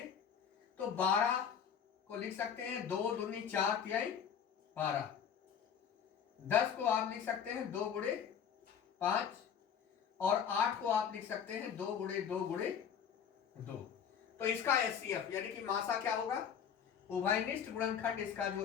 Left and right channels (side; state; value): right; quieter; 7.9 dB